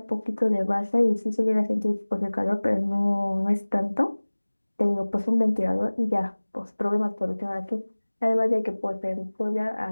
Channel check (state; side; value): inverted; both; correlation -1.00